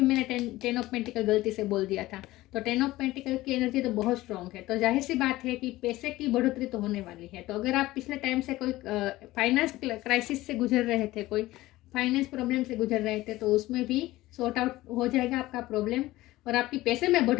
मैंने 10 ऑफ पेंटिकल गलती से बोल दिया था। तो 10 ऑफ पेंटिकल की एनर्जी तो बहुत स्ट्रांग है। तो जाहिर सी बात है कि पैसे की बढ़ोतरी तो होने वाली है। तो अगर आप पिछले टाइम से कोई फाइनेंस क्राइसिस से गुजर रहे थे, कोई फाइनेंस प्रॉब्लम से गुजर रहे थे, तो उसमें भी सॉर्ट आउट हो जाएगा आपका प्रॉब्लम। और आपकी पैसे में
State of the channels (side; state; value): right; quieter; 17.6 dB